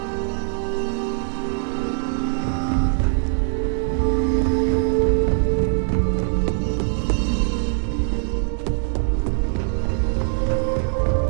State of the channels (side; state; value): left; silent; digital silence